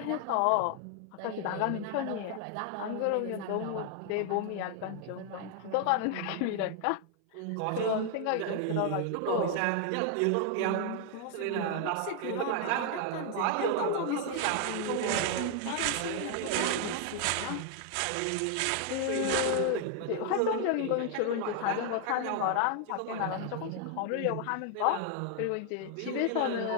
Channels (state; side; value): different; both; correlation 0.00